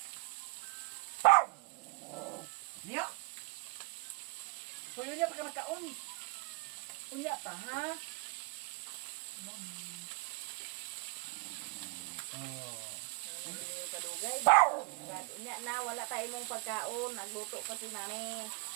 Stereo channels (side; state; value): left; quieter; 28.0 dB